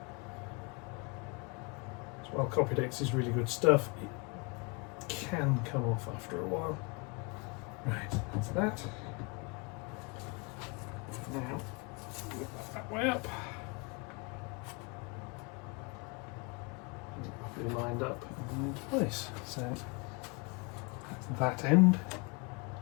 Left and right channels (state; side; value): quieter; right; 30.3 dB